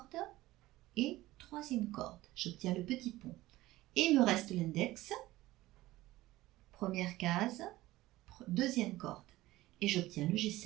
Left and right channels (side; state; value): left; quieter; 17.3 dB